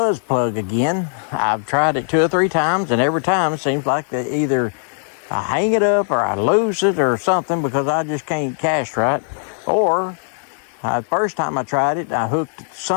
plug again. I've tried it 2 or 3 times, and every time it seems like that either I hang it up or I lose it or something because I just can't cast right. Or the first time I tried it, I hooked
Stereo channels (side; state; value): right; silent; digital silence